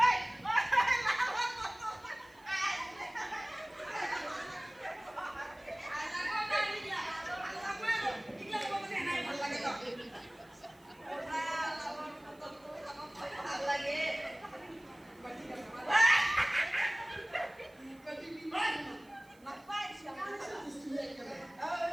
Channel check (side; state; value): right; noise; hiss, 29 dB below the sound